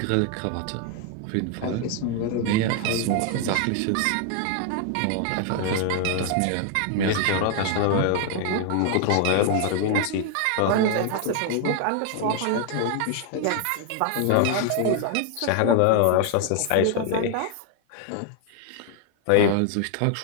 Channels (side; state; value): both; different; correlation 0.00